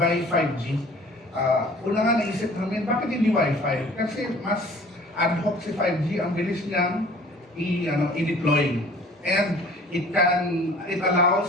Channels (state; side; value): normal; both; correlation 0.49